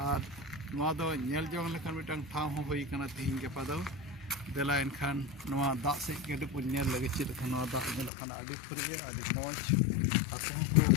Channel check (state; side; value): drops out; right; at 8.1 s